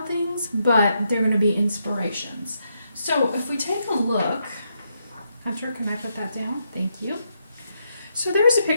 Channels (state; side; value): inverted; both; correlation -0.80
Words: Things, but they're going to be inspirations. So if we take a look, Hunter, can I put that down? Thank you. So there's a